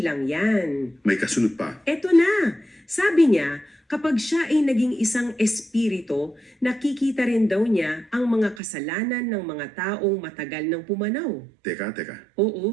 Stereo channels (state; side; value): drops out; left; at 8.6 s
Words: yan. May kasunod pa. Eto na, sabi niya, Kapag siya ay naging isang espiritu, nakikita rin daw niya ang mga kasalanan ng mga taong matagal nang pumanaw. Teka.